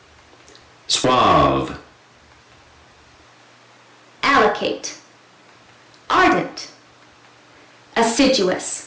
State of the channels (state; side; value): identical; both; correlation 1.00